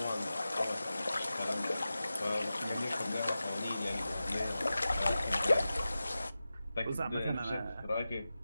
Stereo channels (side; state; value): both; inverted; correlation -0.94